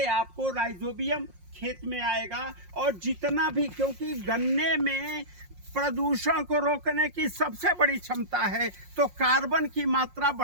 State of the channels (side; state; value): left; late; 5.6 ms